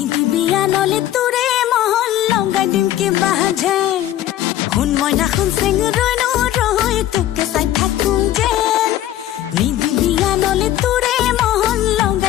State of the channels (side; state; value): right; quieter; 13.1 dB